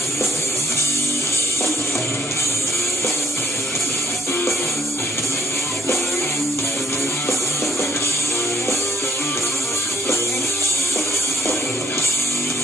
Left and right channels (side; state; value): both; normal; correlation 0.65